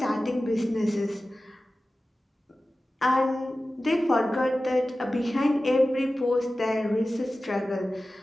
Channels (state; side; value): normal; both; correlation 0.95